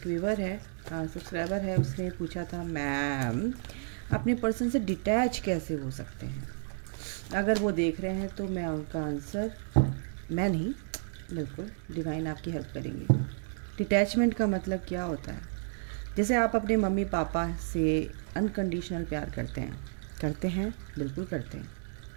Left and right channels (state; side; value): silent; left; digital silence